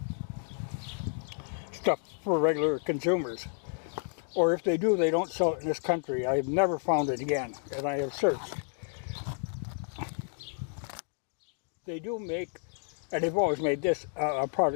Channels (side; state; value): right; silent; 57 dB below the other